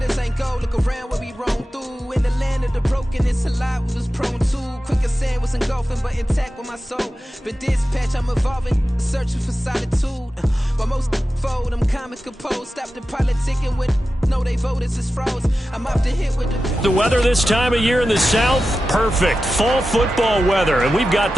ain't gold, look around where we roam through. In the land of the broken, it's a lot we was prone to. Quicker sand was engulfing, but intact with my soul. Been dispatched, I'm evolving, searching for solitude. While most fold, I'm comic composed. Stop the politicking with no, they voters is froze. I'm off the hit with the weather this time of year in the South, perfect. Fall football weather, and we've got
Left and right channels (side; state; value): both; normal; correlation 0.93